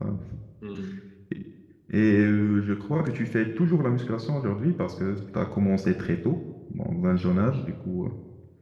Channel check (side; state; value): both; identical; correlation 1.00